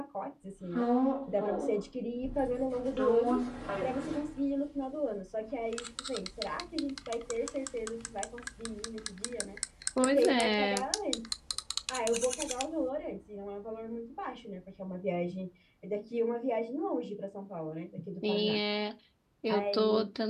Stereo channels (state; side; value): identical; both; correlation 1.00